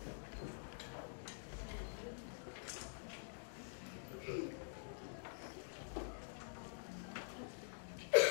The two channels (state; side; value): silent; right; digital silence